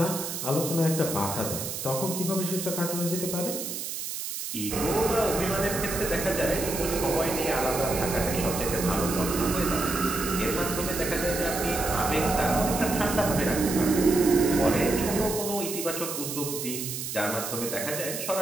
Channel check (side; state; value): right; noise; hiss, 5 dB below the sound